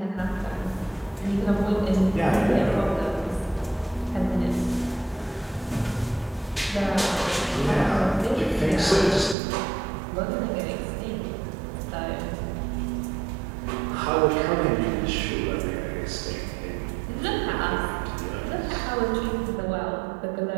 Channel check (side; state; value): left; drops out; at 9.3 s